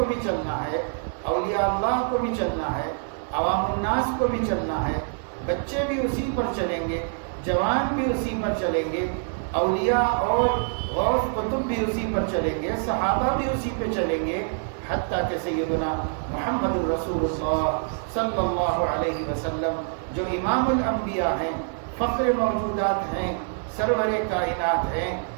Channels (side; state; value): left; silent; 61 dB below the other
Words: بھی چلنا ہے، اولیاء اللہ کو بھی چلنا ہے، عوام الناس کو بھی چلنا ہے، بچے بھی اسی پر چلیں گے، جوان بھی اسی پر چلیں گے، اولیاء اور غوث قطب بھی اسی پر چلیں گے، صحابہ بھی اسی پہ چلیں گے، حتیٰ کہ سیدنا محمد الرسول اللہ صلی اللہ علیہ وسلم جو امام الانبیاء ہیں، فخر موجودات ہیں، سرور کائنات ہیں،